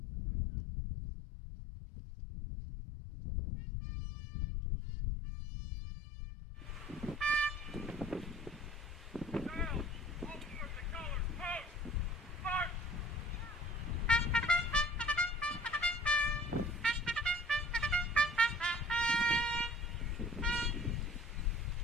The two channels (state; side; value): normal; both; correlation 0.49